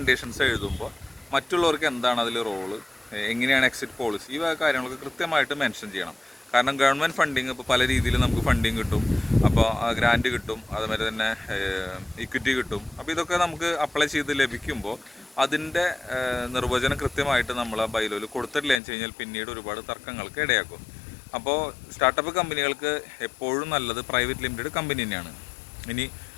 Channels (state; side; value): drops out; right; at 18.8 s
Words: എഴുതുമ്പോൾ മറ്റുള്ളവർക്ക് എന്താണ് അതിൽ റോള്, എങ്ങനെയാണ് എക്സിറ്റ് പോളിസി, ഈ കാര്യങ്ങളൊക്കെ കൃത്യമായിട്ട് മെൻഷൻ ചെയ്യണം. കാരണം ഗവൺമെൻറ് ഫണ്ടിങ് ഇപ്പോൾ പല രീതിയിൽ നമുക്ക് ഫണ്ടിങ് കിട്ടും, അപ്പോൾ ഗ്രാൻറ്റ് കിട്ടും, അതുമാതിരി തന്നെ ഇക്വിറ്റി കിട്ടും. അപ്പോൾ ഇതൊക്കെ നമുക്ക് അപ്ലൈ ചെയ്ത് ലഭിക്കുമ്പോൾ അതിൻ്റെ നിർവചനം കൃത്യമായിട്ട് നമ്മൾ ആ ബൈലോയിൽ കൊടുത്തിട്ടില്ല എന്ന് വെച്ച് കഴിഞ്ഞാൽ പിന്നീട് ഒരുപാട് തർക്കങ്ങൾക്ക് ഇടയാക്കും. അപ്പോൾ സ്റ്റാർട്ടപ്പ് കമ്പനികൾക്ക് എപ്പോഴും നല്ലത് പ്രൈവറ്റ് ലിമിറ്റഡ് കമ്പനി തന്നെയാണ്. ഇനി